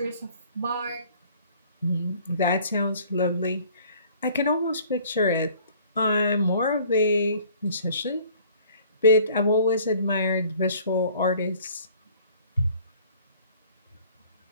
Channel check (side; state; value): both; inverted; correlation -0.54